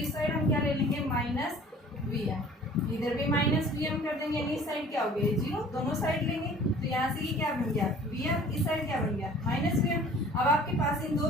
साइड हम क्या ले लेंगे, माइनस vm, इधर भी माइनस vm कर देंगे, यानी इस साइड क्या हो गया, जीरो, दोनों साइड लेंगे। तो यहाँ से ये क्या बन गया, vm, इस साइड क्या बन गया, माइनस vm। अब आपके पास इन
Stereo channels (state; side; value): normal; both; correlation 0.49